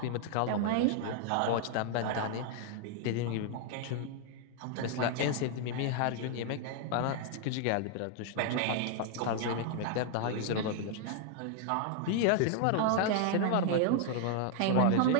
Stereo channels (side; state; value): both; different; correlation 0.00